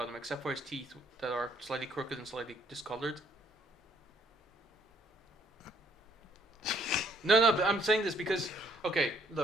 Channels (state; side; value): normal; both; correlation 0.65